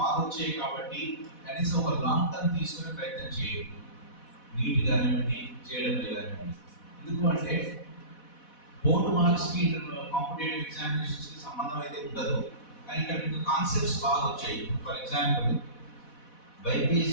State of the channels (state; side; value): late; right; 4.1 ms